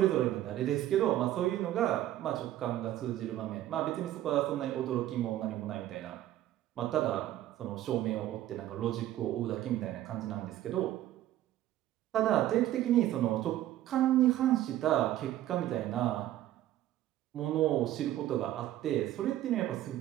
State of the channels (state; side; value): quieter; left; 13.4 dB